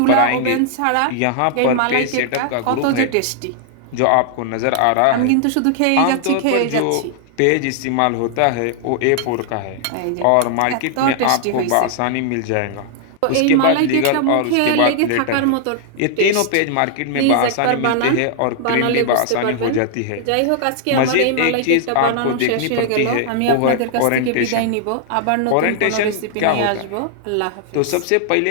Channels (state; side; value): different; both; correlation 0.00